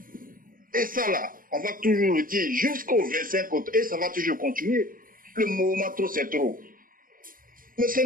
Et ça là, on va toujours le dire jusqu'au 25 août, et ça va toujours continuer. Le mouvement trop, c'est trop. Mais c'est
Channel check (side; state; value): left; late; 0.41 ms